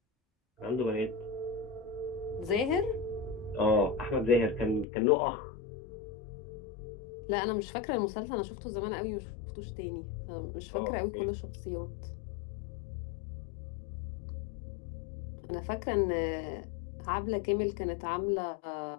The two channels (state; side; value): drops out; right; at 4.9 s